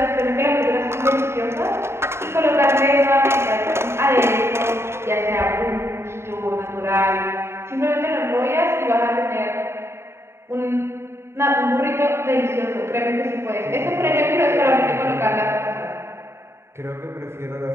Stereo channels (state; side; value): late; left; 0.12 ms